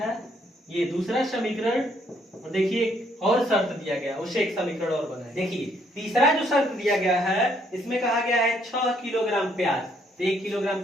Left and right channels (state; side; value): normal; both; correlation 0.69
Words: ये दूसरा समीकरण, और देखिए और शर्त दिया गया उससे एक समीकरण और बना है। देखिए तीसरा जो शर्त दिया गया है इसमें कहा गया है 6 किलोग्राम प्याज, तो 1 किलोग्राम